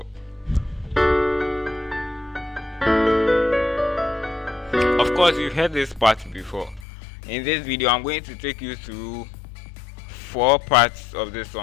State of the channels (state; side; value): drops out; right; at 6.9 s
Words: Of course you've heard this part before. In this video I'm going to take you through 4 parts of this